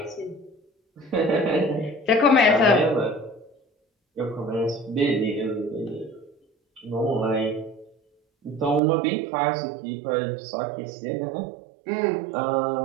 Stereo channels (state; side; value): drops out; left; at 8.8 s